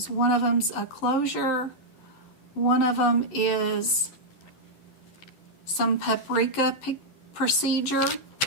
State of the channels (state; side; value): late; right; 11 ms